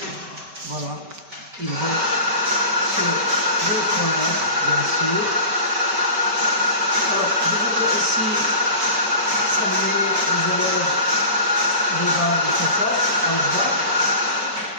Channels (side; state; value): left; late; 5.2 ms